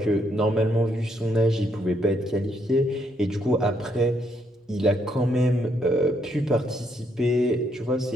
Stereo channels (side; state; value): both; normal; correlation 0.74